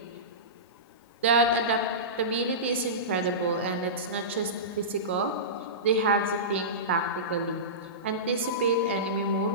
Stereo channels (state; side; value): normal; both; correlation -0.20